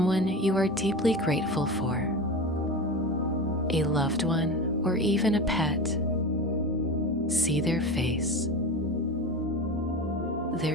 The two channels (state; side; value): normal; both; correlation 0.27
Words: you are deeply grateful for, a loved one or even a pet. See their face,